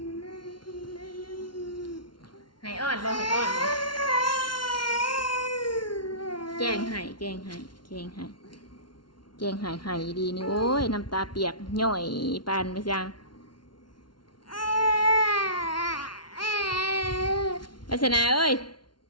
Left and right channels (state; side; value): late; right; 0.71 ms